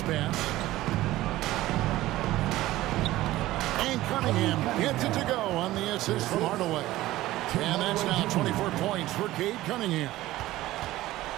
pass. And Cunningham gets it to go on the assist from Hardaway. And that's now 24 points for Cade Cunningham.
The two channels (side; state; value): left; quieter; 16.4 dB